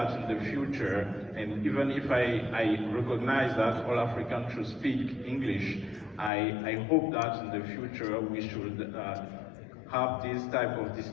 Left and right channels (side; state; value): right; drops out; at 6.3 s